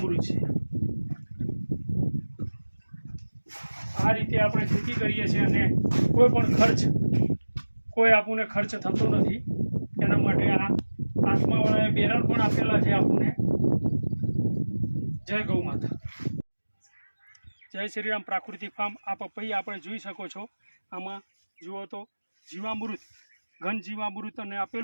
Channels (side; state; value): both; inverted; correlation -1.00